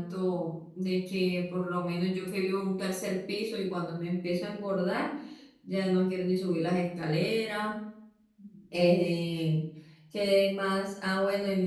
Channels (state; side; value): identical; both; correlation 1.00